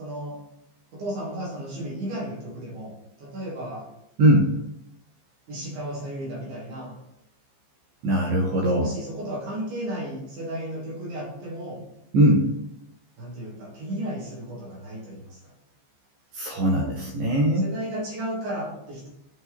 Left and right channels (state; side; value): late; left; 15 ms